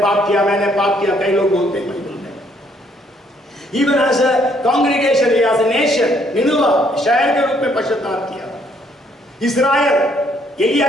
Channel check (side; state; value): both; normal; correlation 0.67